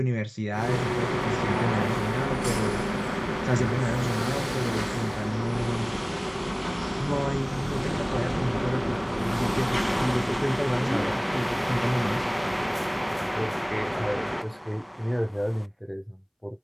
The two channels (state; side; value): identical; both; correlation 1.00